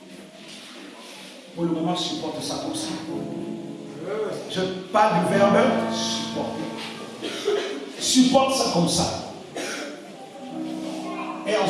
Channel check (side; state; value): both; identical; correlation 1.00